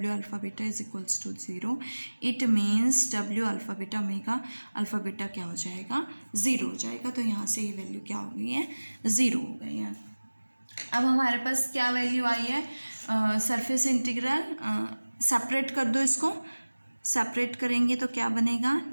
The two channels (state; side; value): inverted; both; correlation -1.00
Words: alpha beta is equals to 0। It means W alpha beta omega alpha beta क्या हो जाएगा, 0 हो जाएगा। तो यहाँ से ये वैल्यू क्या हो गई है, 0 हो गई है। अब हमारे पास क्या वैल्यू आई है, सरफेस इंटीग्रल सेपरेट कर दो, इसको सेपरेट करेंगे तो क्या बनेगा,